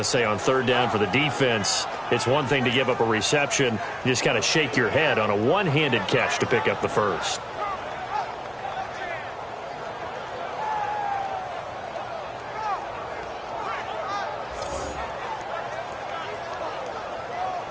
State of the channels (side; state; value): both; identical; correlation 1.00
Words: say on third down for the defense, it's one thing to give up a reception. You just kind of shake your head on a one-handed catch to pick up the first.